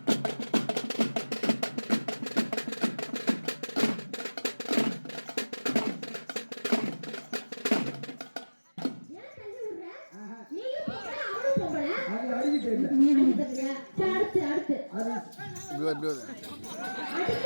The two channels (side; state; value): both; inverted; correlation -1.00